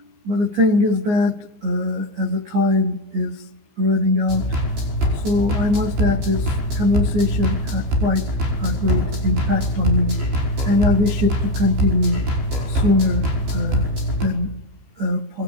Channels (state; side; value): late; left; 15 ms